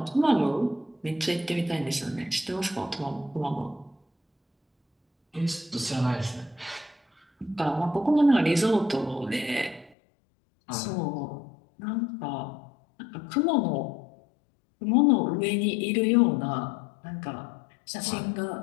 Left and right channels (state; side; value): drops out; right; at 10.0 s